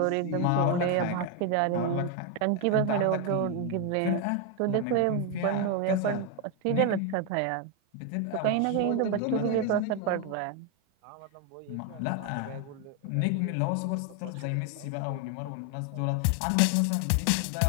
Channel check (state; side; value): different; both; correlation 0.01